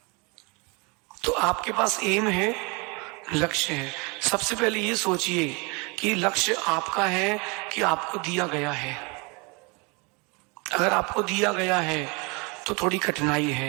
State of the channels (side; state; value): left; quieter; 29.2 dB